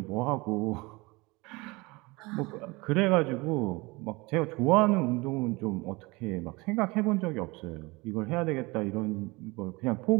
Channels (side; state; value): left; quieter; 24.2 dB